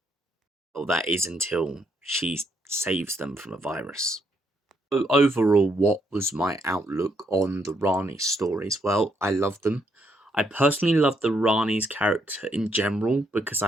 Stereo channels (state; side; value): normal; both; correlation 0.75